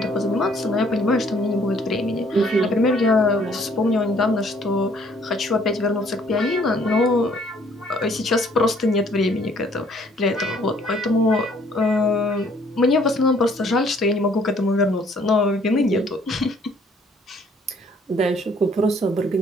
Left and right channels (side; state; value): both; normal; correlation 0.62